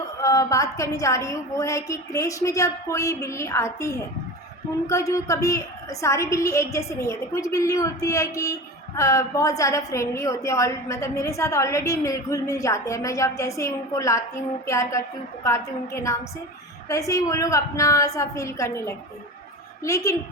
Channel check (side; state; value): both; normal; correlation 0.30